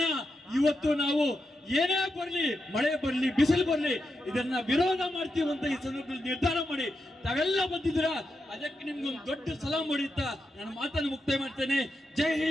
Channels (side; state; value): both; normal; correlation 0.86